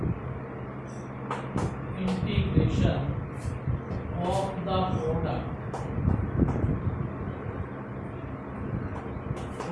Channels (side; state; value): both; identical; correlation 1.00